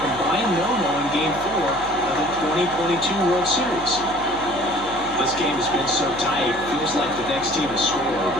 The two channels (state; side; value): noise; left; hum, 17 dB below the sound